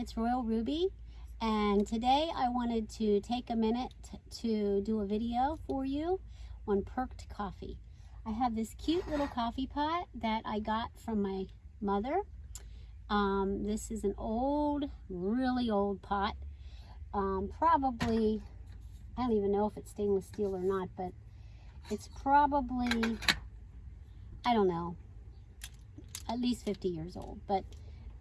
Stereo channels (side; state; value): both; identical; correlation 1.00